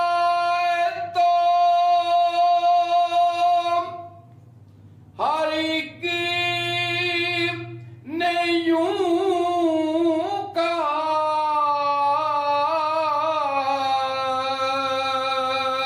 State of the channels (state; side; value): identical; both; correlation 1.00